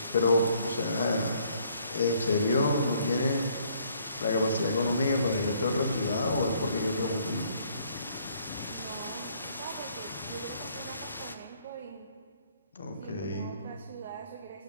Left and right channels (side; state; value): both; inverted; correlation -0.64